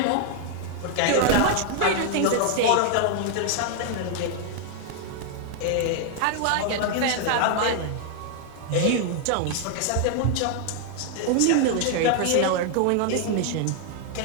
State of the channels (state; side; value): different; both; correlation 0.00